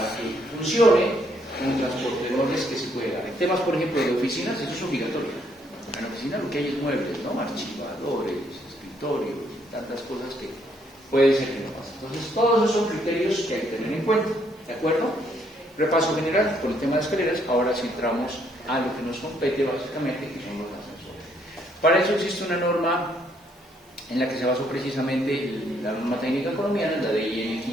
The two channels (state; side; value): normal; both; correlation 0.70